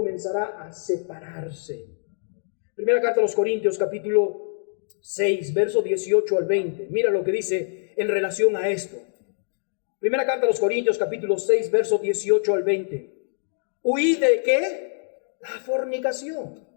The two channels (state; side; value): silent; right; digital silence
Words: a separarse. Primera carta a los Corintios, capítulo 6, verso 18 al 20. Mira lo que dice en relación a esto. Primera carta a los Corintios, capítulo 6, verso 18 al 20. ¿Huid de qué? La fornicación.